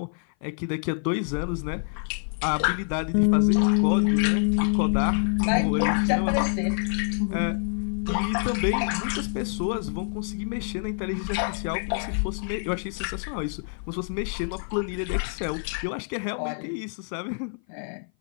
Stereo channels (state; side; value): silent; right; 56 dB below the other